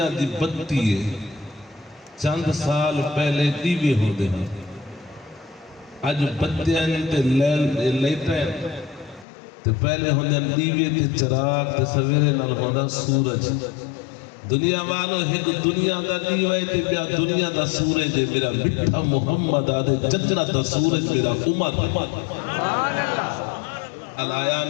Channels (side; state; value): right; drops out; at 9.2 s